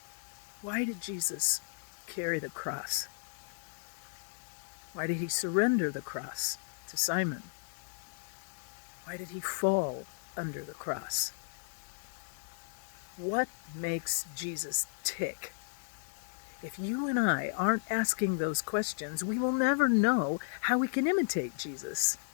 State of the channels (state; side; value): silent; right; digital silence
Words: Why did Jesus carry the cross? Why did he surrender the cross to Simon? Why did he fall under the cross? What makes Jesus tick? If you and I aren't asking those questions, we will never know how we can imitate Jesus,